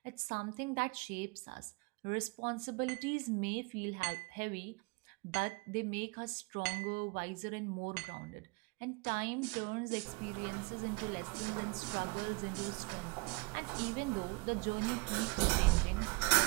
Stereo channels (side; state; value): left; quieter; 28.2 dB